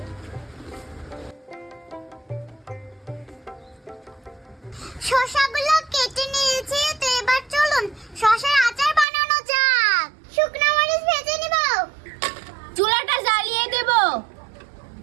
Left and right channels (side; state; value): left; drops out; at 9.1 s